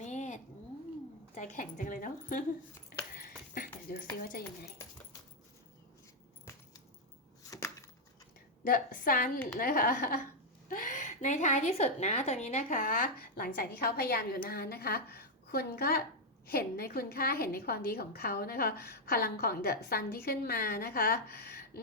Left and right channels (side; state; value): both; normal; correlation 0.00